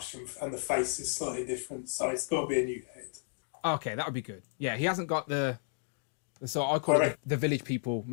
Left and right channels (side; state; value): right; silent; digital silence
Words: and the face is slightly different, so it's got to be a new head. Okay, that would be good. Yeah, he hasn't got the so I call it the village people